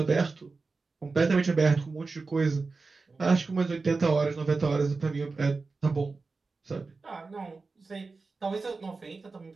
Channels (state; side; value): quieter; left; 4.0 dB